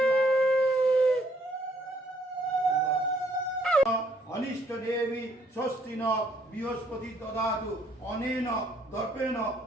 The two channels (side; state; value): both; normal; correlation 0.67